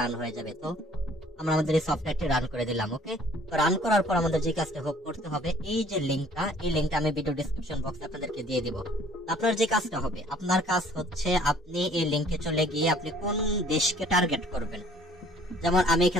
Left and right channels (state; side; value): normal; both; correlation 0.55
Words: রান হয়ে যাবে। তো আমরা আমাদের এই সফটওয়্যারটি রান করে দিলাম। ওকে, তো রান করার পর আমাদের যে কাজটা করতে হবে, এই যে লিংকটা, এই লিংকটা আমি ভিডিও ডেসক্রিপশন বক্সে আপনাদেরকে দিয়ে দিব। আপনার যে কাজটা হবে, আপনার কাজ হচ্ছে আপনি এই লিংকে চলে গিয়ে আপনি কোন দেশকে টার্গেট করবেন। যেমন আমি